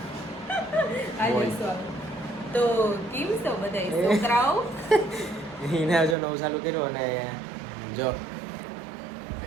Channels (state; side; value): drops out; left; at 6.2 s